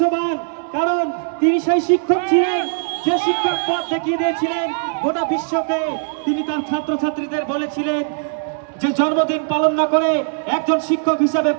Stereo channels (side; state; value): left; silent; digital silence